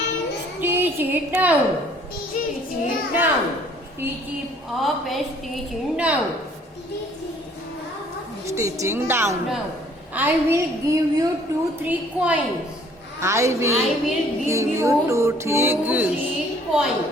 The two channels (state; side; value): normal; both; correlation 0.58